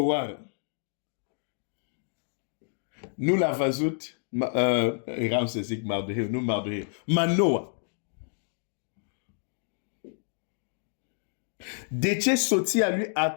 nu l-a văzut, eram să zic Mardoheu, nu Mardoheu, Manoa. De ce soția lui a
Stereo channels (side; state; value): right; silent; digital silence